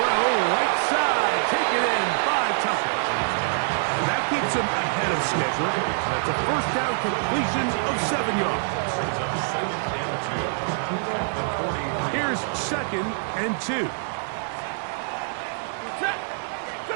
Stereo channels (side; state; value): left; silent; digital silence